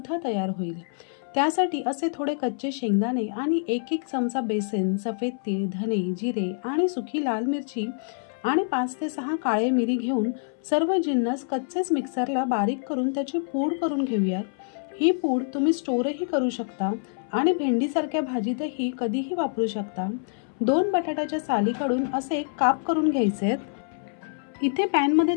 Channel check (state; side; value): silent; right; 61 dB below the other